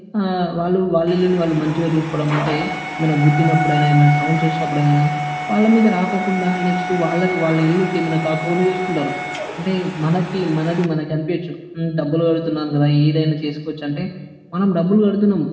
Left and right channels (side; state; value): both; identical; correlation 1.00